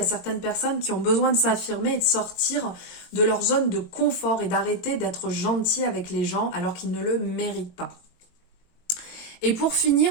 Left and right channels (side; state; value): right; late; 22 ms